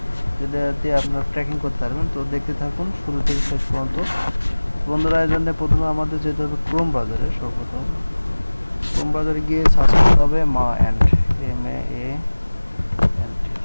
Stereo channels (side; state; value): both; inverted; correlation -1.00